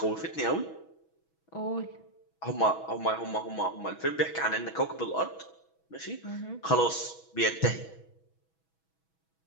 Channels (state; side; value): late; right; 6.2 ms